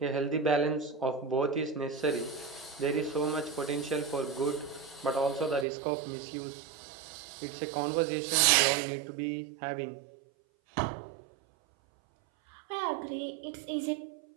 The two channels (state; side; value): drops out; left; at 5.7 s